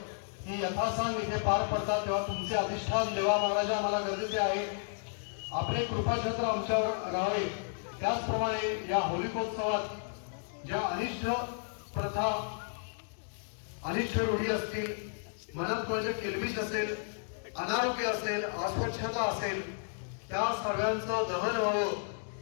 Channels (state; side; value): silent; right; digital silence